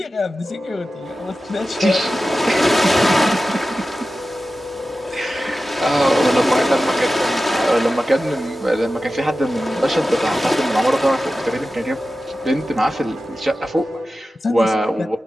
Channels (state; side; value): normal; both; correlation 0.94